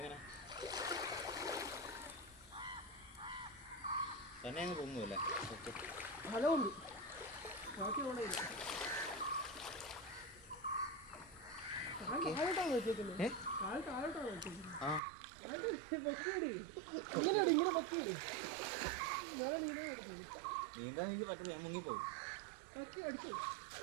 തന്നെ അങ്ങ് പൊങ്ങുമല്ലേ? നീന്താൻ എനിക്ക് പറ്റില്ല, ഞാൻ മുങ്ങിപ്പോകും.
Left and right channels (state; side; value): drops out; left; at 15.0 s